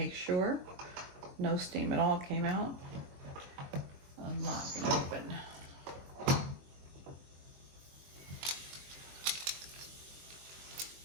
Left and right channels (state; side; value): late; left; 22 ms